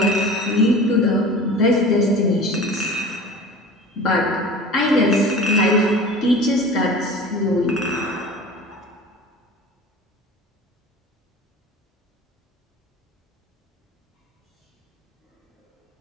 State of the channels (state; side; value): normal; both; correlation 0.39